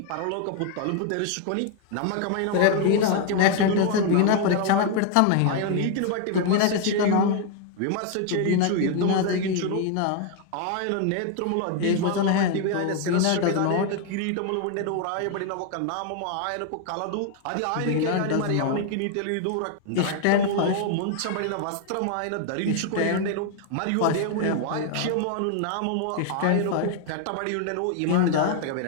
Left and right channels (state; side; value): different; both; correlation 0.00